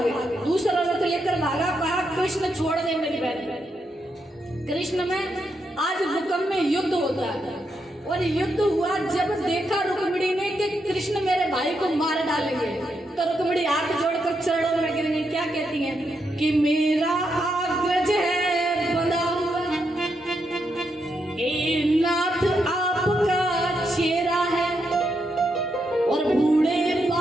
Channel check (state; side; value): normal; both; correlation 0.81